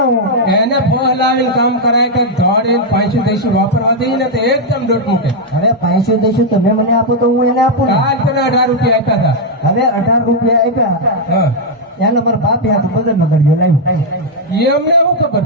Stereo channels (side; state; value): both; normal; correlation -0.02